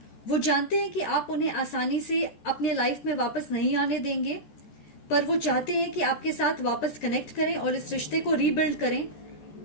वो जानते हैं कि आप उन्हें आसानी से अपने लाइफ में वापस नहीं आने देंगे, पर वो चाहते हैं कि आपके साथ वापस कनेक्ट करें और इस रिश्ते को रीबिल्ड करें।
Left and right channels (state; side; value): late; right; 14 ms